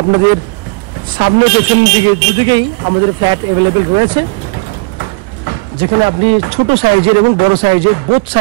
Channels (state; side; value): quieter; left; 29.5 dB